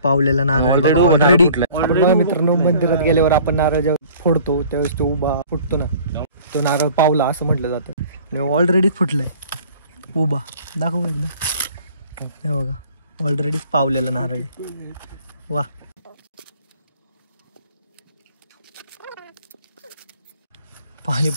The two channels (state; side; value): inverted; both; correlation -0.50